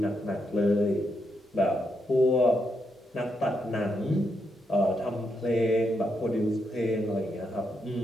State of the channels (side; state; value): both; normal; correlation 0.81